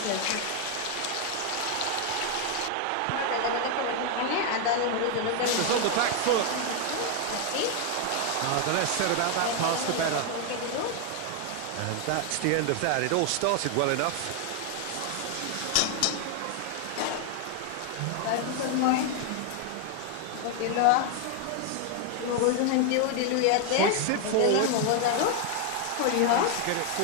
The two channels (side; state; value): both; different; correlation 0.00